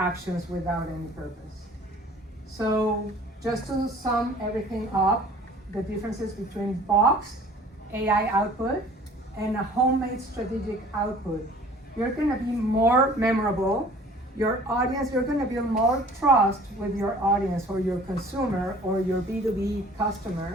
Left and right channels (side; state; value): both; normal; correlation 0.50